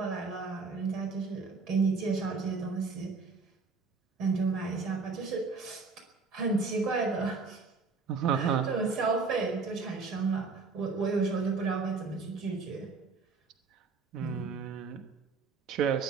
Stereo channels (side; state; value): left; quieter; 4.5 dB